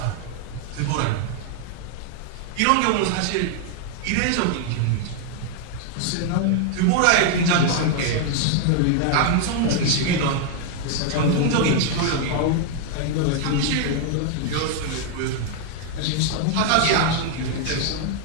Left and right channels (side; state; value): both; different; correlation 0.00